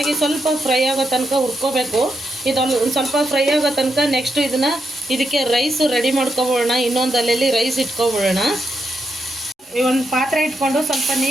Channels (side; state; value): both; normal; correlation 0.82